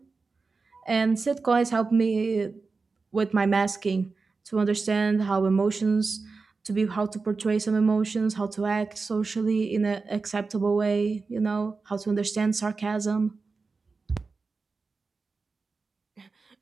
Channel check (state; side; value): quieter; left; 4.3 dB